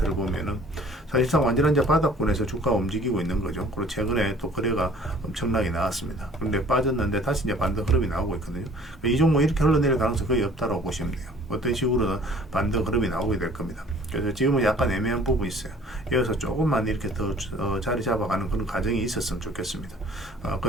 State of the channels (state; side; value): normal; both; correlation 0.52